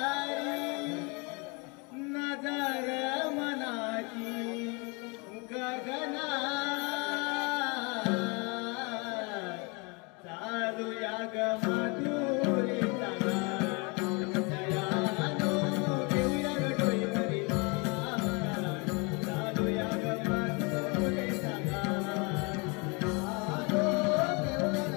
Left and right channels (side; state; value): right; quieter; 30.5 dB